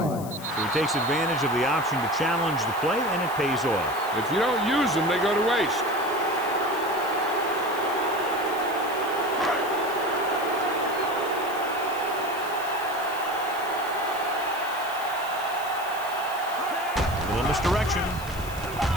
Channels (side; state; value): left; noise; hiss, 15 dB below the sound